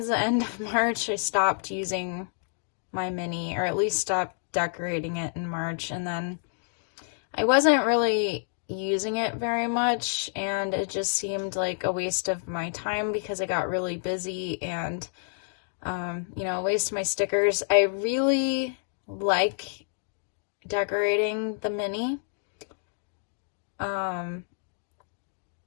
the end of March, I stopped using my mini, or at least stopped decorating it in March. And then I wasn't really using it very much, and it just seemed like a waste of my time because I got really busy and a waste of my stickers. I really like decorating the mini, and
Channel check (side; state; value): right; silent; digital silence